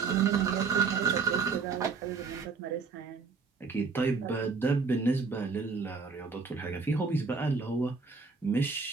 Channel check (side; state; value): left; quieter; 4.9 dB